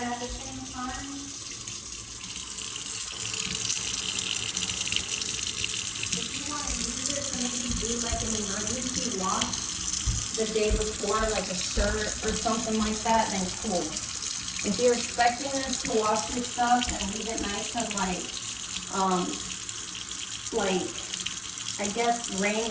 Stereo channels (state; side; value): identical; both; correlation 1.00